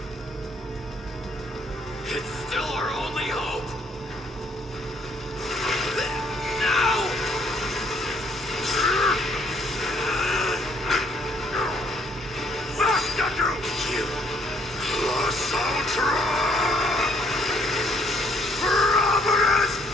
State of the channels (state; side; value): normal; both; correlation 0.66